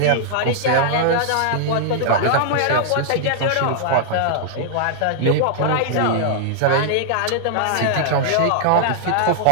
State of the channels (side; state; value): both; different; correlation -0.01